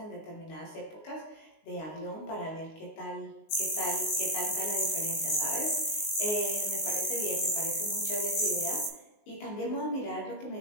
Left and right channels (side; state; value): right; late; 19 ms